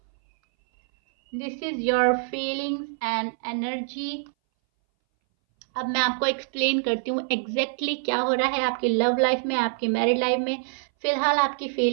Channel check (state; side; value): silent; left; 60 dB below the other